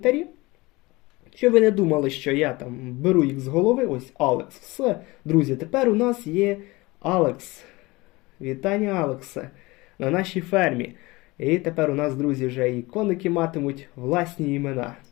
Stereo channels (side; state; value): right; quieter; 22.3 dB